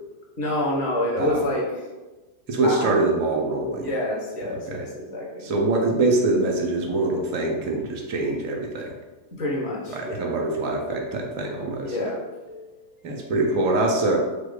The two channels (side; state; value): left; late; 2.7 ms